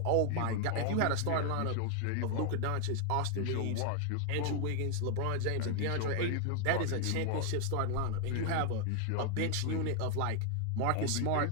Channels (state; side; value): different; both; correlation 0.00